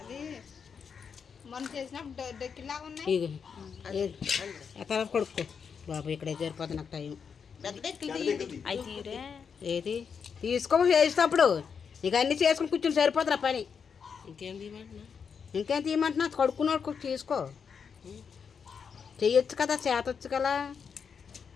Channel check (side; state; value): right; quieter; 6.4 dB